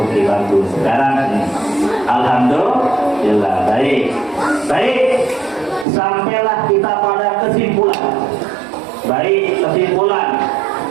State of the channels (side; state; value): left; drops out; at 5.9 s